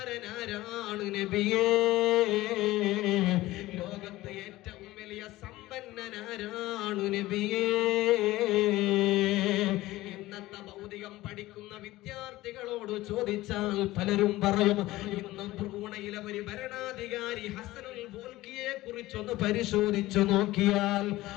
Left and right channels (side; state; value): right; quieter; 17.5 dB